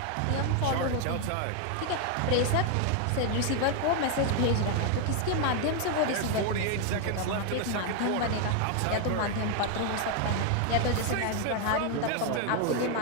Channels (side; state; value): both; different; correlation 0.01